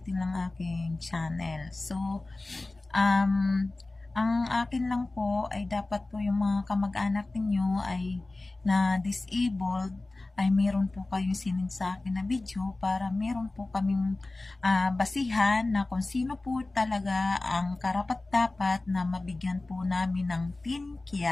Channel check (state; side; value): quieter; right; 3.0 dB